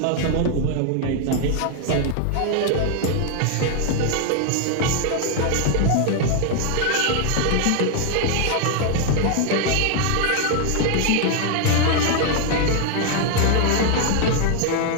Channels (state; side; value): different; both; correlation 0.00